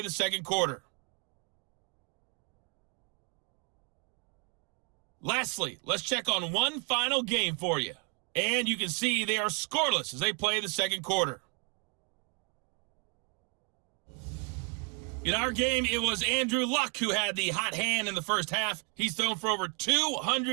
the second quarter. Lastly, let's check on one final game for you. And you can see they are scoreless as they play the second quarter. In our game, it was Andrew Luck who had the hot hand in the first half. He's thrown for over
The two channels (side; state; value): left; quieter; 32.8 dB